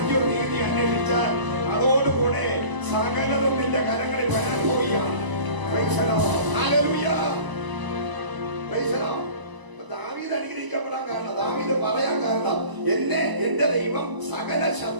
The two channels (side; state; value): left; late; 1.0 ms